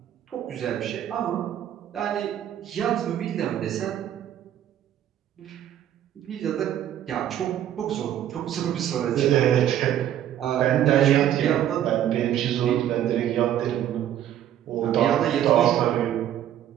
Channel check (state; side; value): quieter; left; 11.2 dB